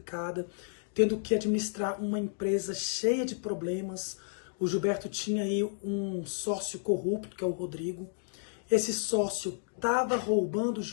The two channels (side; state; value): right; silent; digital silence